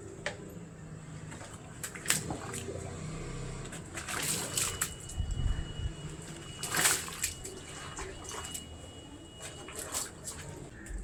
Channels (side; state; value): both; identical; correlation 1.00